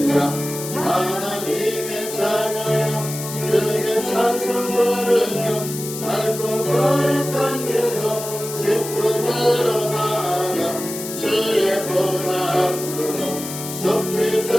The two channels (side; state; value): left; noise; hiss, 9 dB below the sound